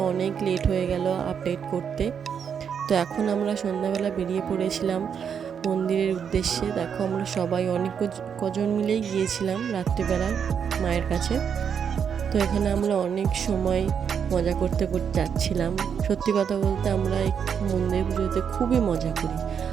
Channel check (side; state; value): left; quieter; 7.4 dB